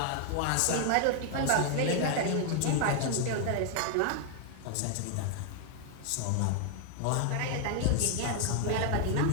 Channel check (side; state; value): both; different; correlation 0.00